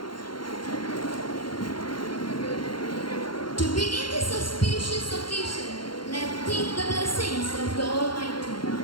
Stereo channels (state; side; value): late; right; 0.72 ms